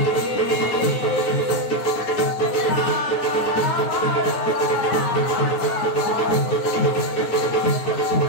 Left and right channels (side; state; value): right; late; 9.3 ms